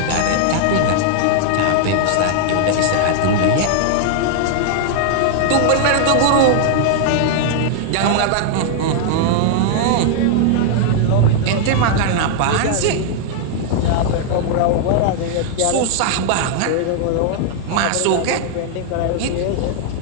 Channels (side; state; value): both; different; correlation 0.00